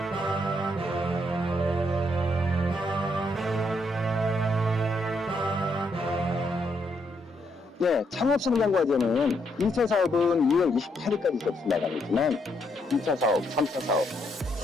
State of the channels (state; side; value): normal; both; correlation 0.76